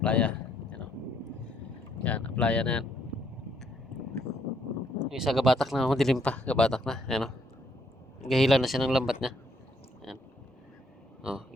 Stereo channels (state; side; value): normal; both; correlation 0.70